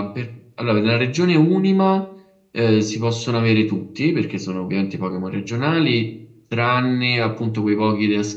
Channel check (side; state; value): both; identical; correlation 1.00